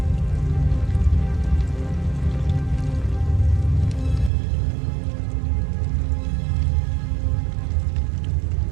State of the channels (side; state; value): left; drops out; at 4.3 s